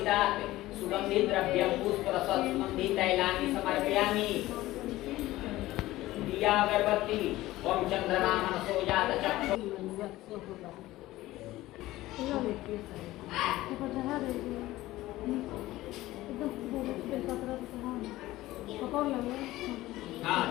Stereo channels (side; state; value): right; quieter; 16.9 dB